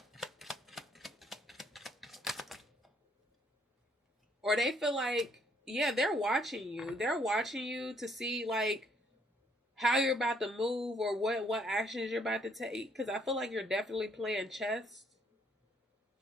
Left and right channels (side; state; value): both; normal; correlation 0.67